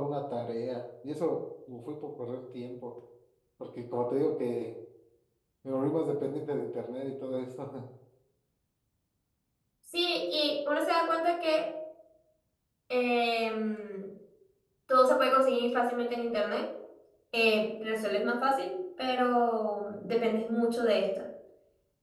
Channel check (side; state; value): both; identical; correlation 1.00